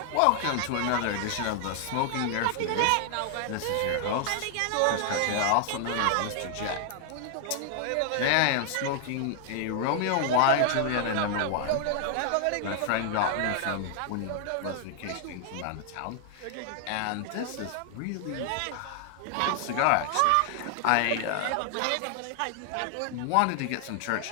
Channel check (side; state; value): both; different; correlation 0.00